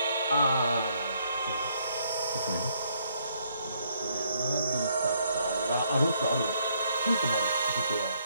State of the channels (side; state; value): both; inverted; correlation -0.70